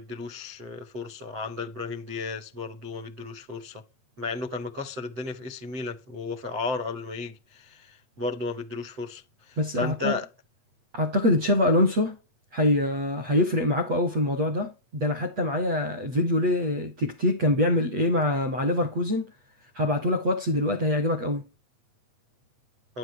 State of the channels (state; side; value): late; left; 8.3 ms